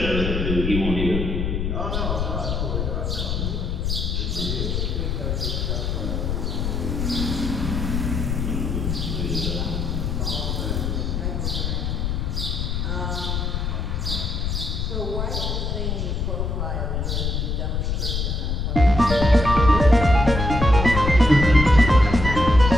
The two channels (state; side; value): noise; left; rumble, 1 dB below the sound